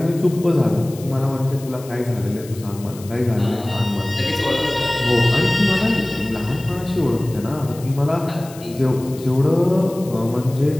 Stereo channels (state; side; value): noise; left; hiss, 19 dB below the sound